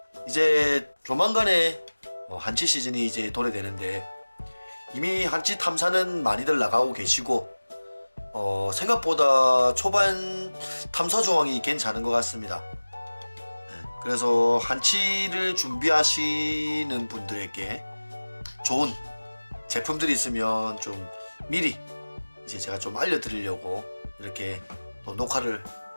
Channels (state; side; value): inverted; both; correlation -1.00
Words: 이제 조만간에 한치 시즌이 이제 도래되는데 이미 한치 탐사는 많이들 나가고 계시고 생각보다 초반 탐사 조항이 괜찮은 것 같습니다. 그래서 한치를 준비하시는 분들에게 좋은 제품들이 있으면 좀 미리 이제 제가 좀 알려드리려고 이렇게 또 녹화를